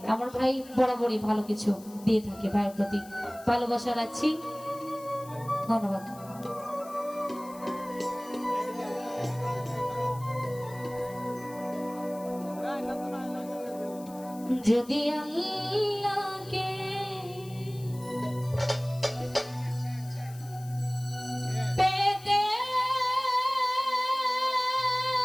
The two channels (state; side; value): noise; left; hiss, 21 dB below the sound